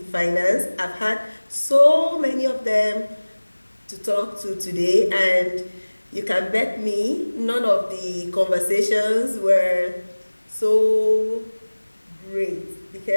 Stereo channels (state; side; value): inverted; both; correlation -1.00